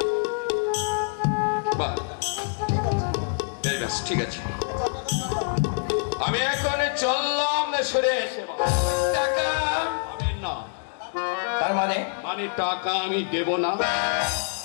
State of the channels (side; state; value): right; silent; digital silence